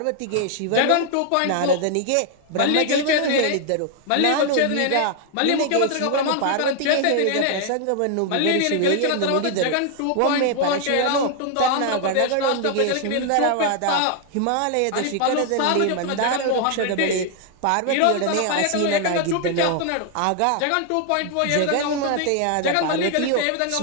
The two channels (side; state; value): both; different; correlation 0.00